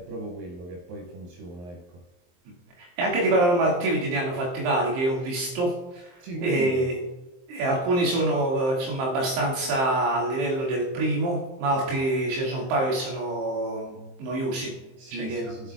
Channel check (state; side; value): late; left; 23 ms